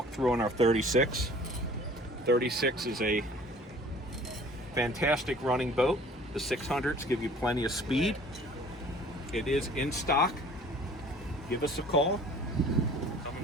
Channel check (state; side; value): normal; both; correlation 0.50